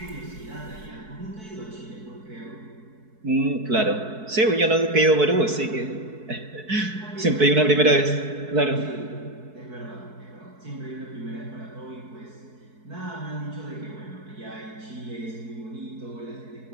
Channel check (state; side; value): late; left; 4.6 ms